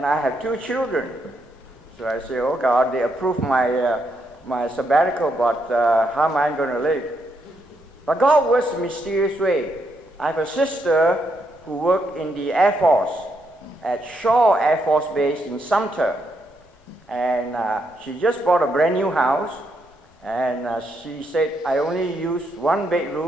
I have 2 children. So I say, oh God, they approved my sabbatical, but how am I going to live? But God works in a mysterious way. I have a sister who worked in the Air Force at Shaw Air Force Base in Sumter. And she just bought a brand new house. And she said, I only use 1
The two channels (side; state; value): both; normal; correlation 0.78